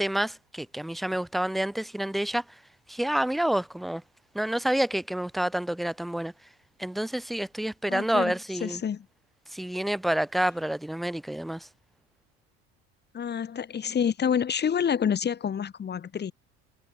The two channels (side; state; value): both; normal; correlation 0.79